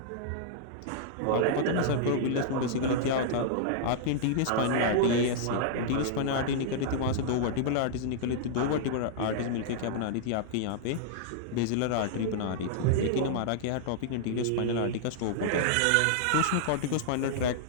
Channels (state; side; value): different; both; correlation -0.01